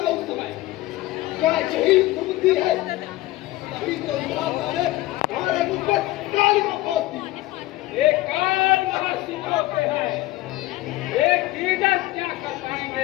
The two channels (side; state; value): right; quieter; 17.6 dB